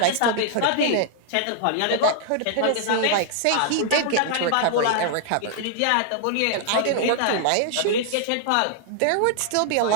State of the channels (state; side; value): different; both; correlation 0.00